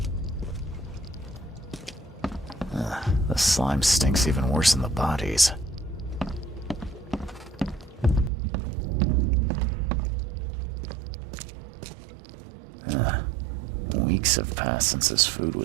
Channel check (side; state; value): left; drops out; at 8.3 s